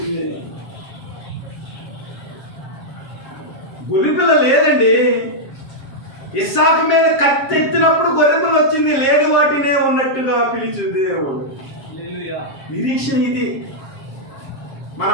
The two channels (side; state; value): right; late; 7.4 ms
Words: గొర్రెపిల్ల లేదండి. ఇస్సాకు మీద కత్తెత్తినప్పుడు గొర్రెపిల్ల వచ్చింది. లేని వాటినే ఉన్నట్టుగా పిలిచింది దేవుడు. నిరీక్షణ ఇది. మన